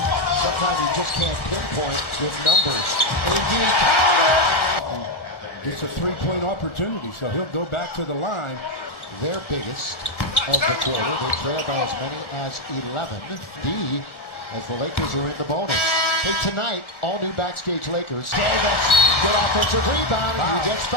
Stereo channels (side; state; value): right; late; 1.4 ms